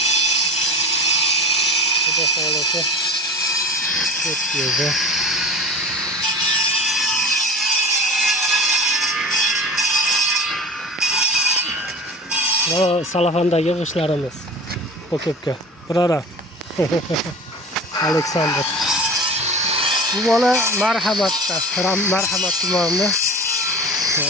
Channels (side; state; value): both; normal; correlation 0.36